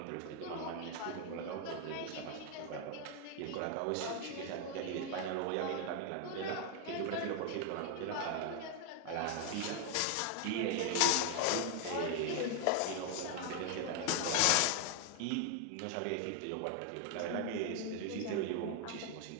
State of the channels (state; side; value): different; both; correlation 0.00